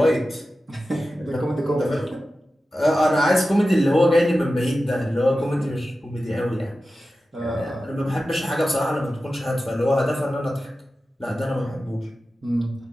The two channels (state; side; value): normal; both; correlation 0.93